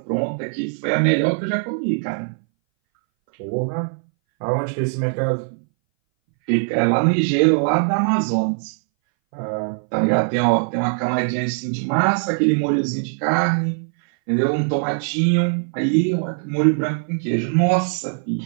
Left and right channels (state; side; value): silent; left; 61 dB below the other